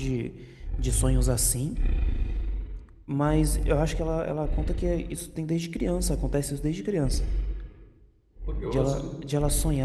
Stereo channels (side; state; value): both; identical; correlation 1.00